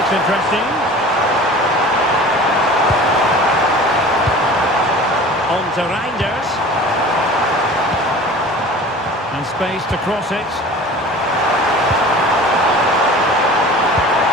interesting. On to Reinders. And space to cross it.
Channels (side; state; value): both; normal; correlation 0.41